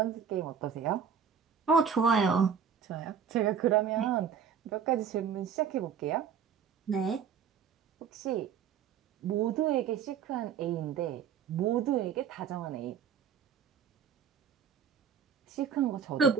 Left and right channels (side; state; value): left; quieter; 7.4 dB